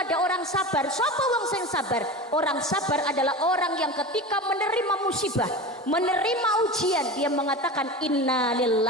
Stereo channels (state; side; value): normal; both; correlation 0.29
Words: orang sabar. Sapa wong sing sabar? Orang sabar adalah orang yang ketika menerima musibah, menerima ujian, dia mengatakan inna